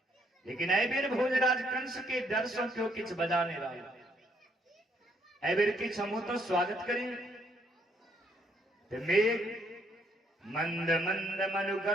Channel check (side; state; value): both; normal; correlation 0.70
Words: लेकिन ऐबेर भोजराज कंस के डर से क्यों किछ बजा नहीं रहा। ऐबेर किछ हम तो स्वागत करें तो मेघ मंद मंद